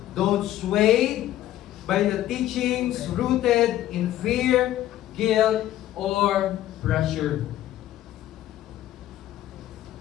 Don't sway by the teachings rooted in fear, guilt, or pressure.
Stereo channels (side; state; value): right; quieter; 13.4 dB